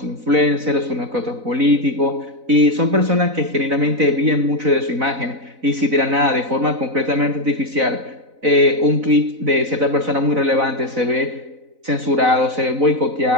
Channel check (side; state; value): left; late; 4.0 ms